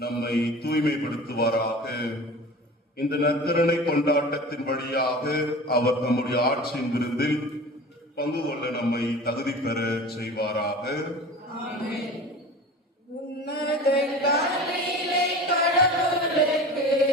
தூய்மைப்படுத்துவாராக. இந்த நற்கருணை கொண்டாட்டத்தின் வழியாக அவர் நம்முடைய ஆட்சியின் விருந்தில் பங்கு கொள்ள நம்மை தகுதி பெற செய்வாராக. உன்னதங்களிலே கடவுளுக்கு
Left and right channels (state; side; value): normal; both; correlation 0.37